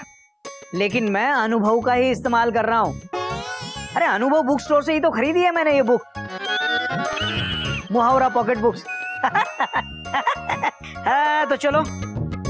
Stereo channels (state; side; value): identical; both; correlation 1.00